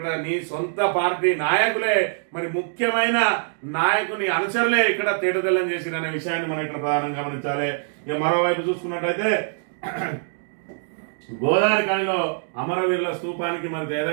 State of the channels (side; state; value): left; silent; digital silence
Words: నీ సొంత పార్టీ నాయకులే మరి ముఖ్యమైన నాయకుని అనుచరులే ఇక్కడ తేటతెల్లం చేసిరనే విషయాన్ని మనం ఇక్కడ ప్రధానంగా గమనించాలి. ఇక మరోవైపు చూసుకున్నట్టయితే గోదావరి ఖనిలో అమరవీరుల స్తూపానికి మరి